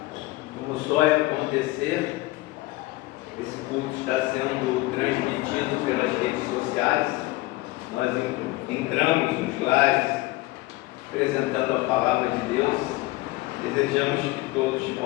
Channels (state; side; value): quieter; right; 20.0 dB